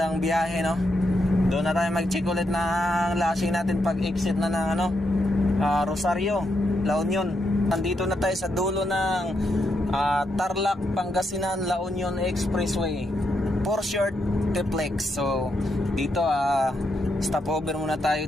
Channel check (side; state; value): both; normal; correlation 0.81